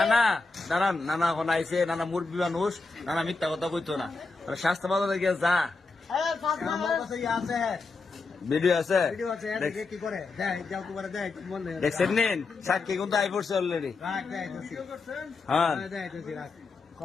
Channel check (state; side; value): quieter; right; 3.9 dB